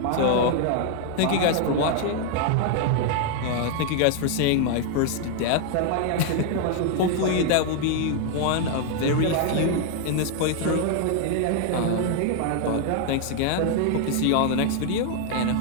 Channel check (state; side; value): different; both; correlation 0.00